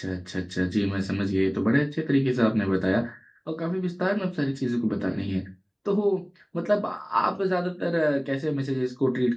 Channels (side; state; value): both; identical; correlation 1.00